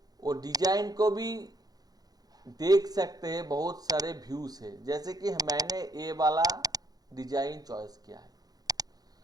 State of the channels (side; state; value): left; late; 0.19 ms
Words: वो डिजाइन को भी देख सकते हैं, बहुत सारे व्यूज है। जैसे कि मैंने ये वाला डिजाइन चॉइस किया है,